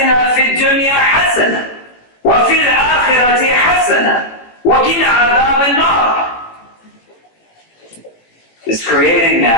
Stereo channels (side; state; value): right; late; 18 ms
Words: فِي الدُّنْيا حَسَنًا وَفِي الْآخِرَةِ حَسَنًا وَقِنَا عَذَابَ النَّارِ. It's creating